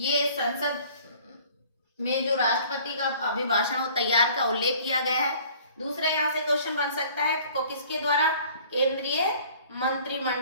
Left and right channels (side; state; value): both; inverted; correlation -0.51